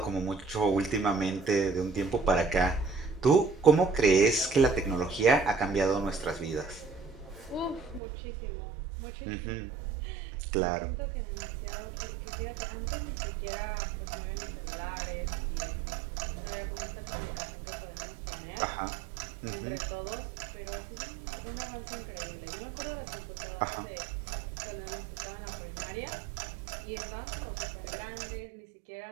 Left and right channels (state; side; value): drops out; left; at 8.0 s